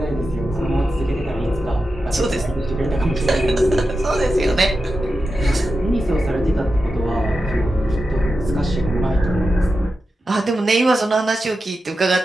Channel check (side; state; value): both; normal; correlation 0.90